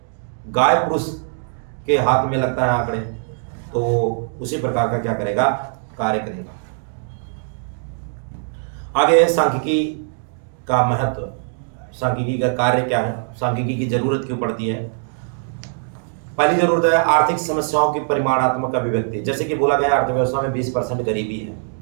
गाय पुरुष के हाथ में लगता है आंकड़े तो उसी प्रकार का क्या करेगा? कार्य करेगा। आगे सांख्यिकी का महत्व, सांख्यिकी का कार्य क्या है, सांख्यिकी की जरूरत क्यों पड़ती है? पहली जरूरत है आर्थिक समस्याओं की परिमाणात्मक अभिव्यक्ति। जैसे कि बोला गया अर्थव्यवस्था में 20% गरीबी है,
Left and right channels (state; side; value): silent; left; digital silence